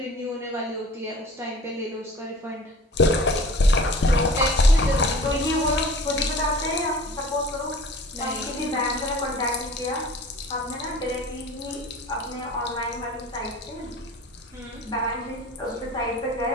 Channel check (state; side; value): normal; both; correlation 0.44